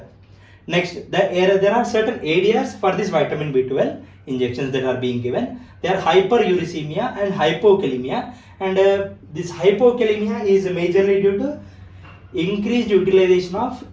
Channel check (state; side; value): identical; both; correlation 1.00